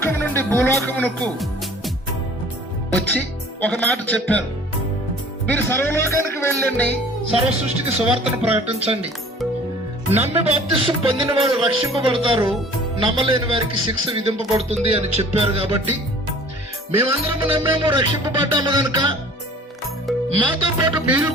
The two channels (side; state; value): both; normal; correlation 0.49